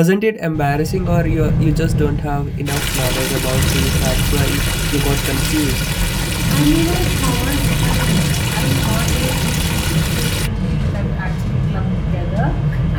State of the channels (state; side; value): identical; both; correlation 1.00